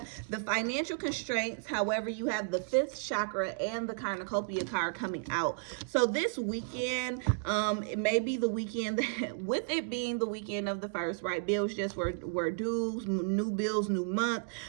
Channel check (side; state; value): left; silent; digital silence